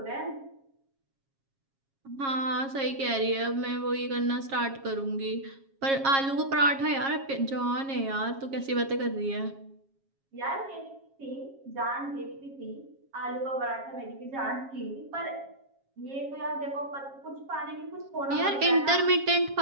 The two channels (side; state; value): left; late; 7.4 ms